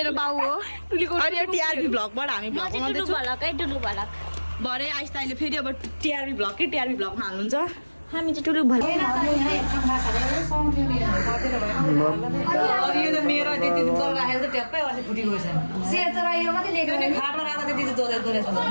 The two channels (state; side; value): inverted; both; correlation -1.00